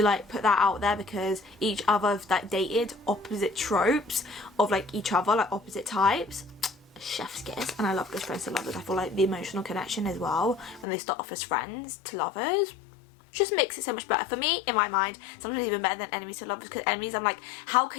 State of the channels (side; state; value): right; drops out; at 10.9 s